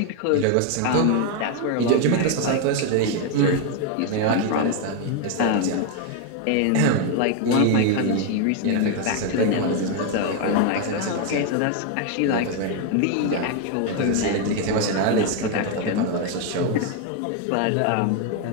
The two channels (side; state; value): both; different; correlation 0.01